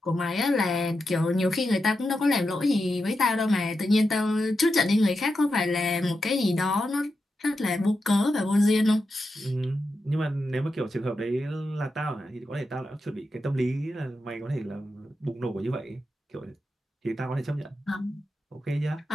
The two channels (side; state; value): both; normal; correlation 0.88